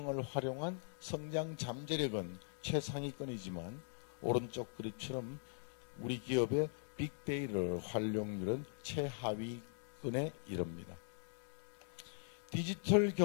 활용한 성장 잠재력은 최상위권이지만 오른쪽 그림처럼 우리 기업의 빅데이터 활용률은 최하위권에 이릅니다. 디지털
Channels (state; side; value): silent; right; digital silence